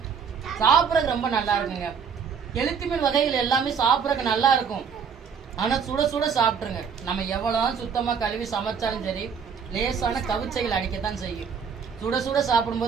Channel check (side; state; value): left; quieter; 6.6 dB